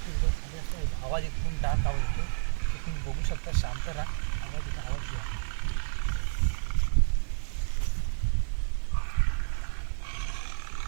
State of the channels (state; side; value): silent; left; 58 dB below the other